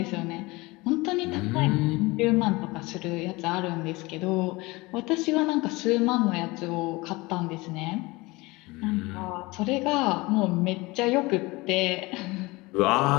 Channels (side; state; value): right; quieter; 22.8 dB